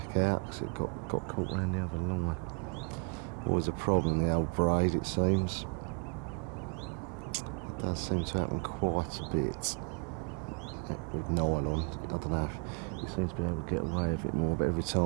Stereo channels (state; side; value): quieter; left; 39.0 dB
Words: out because it got caught around the other line. Always a problem, the old braid, it seems. It does seem to happen quite a bit with nylon. I don't know, he seems to be able to get away with it more, but every